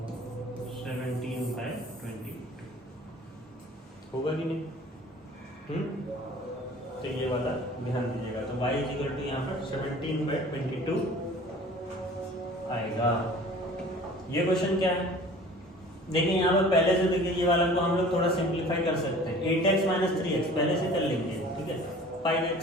17/22 होगा कि नहीं? तो ये वाला ध्यान दीजिएगा, तो y इज इक्वल टू यहाँ पर 17/22 आएगा। ये क्वेश्चन क्या है, देखिए यहाँ पर पहले से देखिए, ये वाला को हम लोग थोड़ा सिंप्लीफाई कर सकते हैं। 8x माइनस 3x पहले से कर लेंगे। ठीक है, 5x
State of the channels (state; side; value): normal; both; correlation 0.46